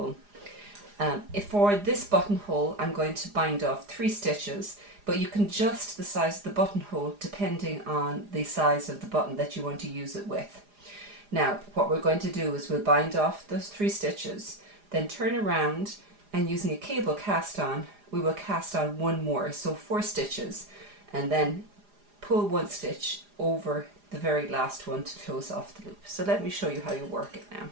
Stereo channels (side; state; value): left; late; 4.9 ms